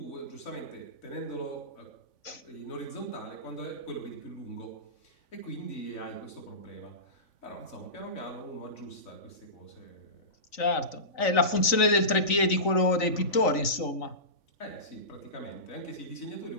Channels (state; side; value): late; right; 3.9 ms